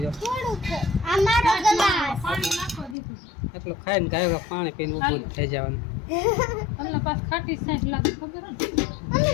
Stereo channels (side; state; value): right; drops out; at 3.0 s